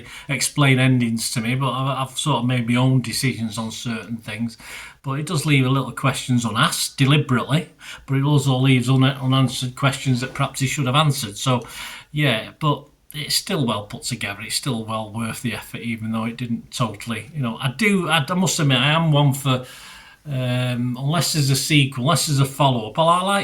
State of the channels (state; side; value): identical; both; correlation 1.00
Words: explain endings to me, but I've sort of made my own decisions on certain things. But it does leave a little questions unasked deliberately, but it also leaves unanswered questions that perhaps he should have answered. So, yeah, but it's still well put together. It's still well worth the effort, even though it didn't totally. I must admit, I am one for. Unless there's a sequel, unless there's a follow-up, I